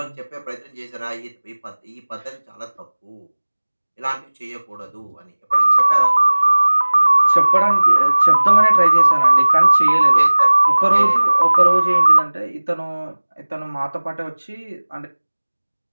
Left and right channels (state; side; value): inverted; both; correlation -1.00